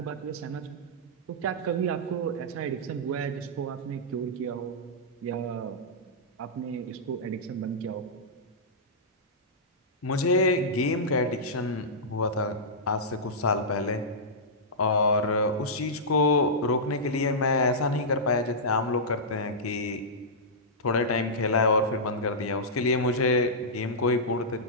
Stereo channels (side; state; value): both; normal; correlation -0.13